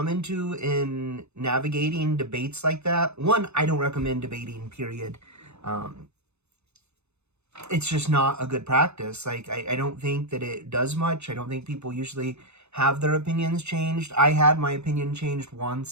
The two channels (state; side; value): late; left; 0.81 ms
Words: into in navigating debates like that. One, I don't recommend debating, period. Um, it's just not a good practice. Like, I don't think that it does much. I don't think people usually have their opinions changed. I had my opinion changed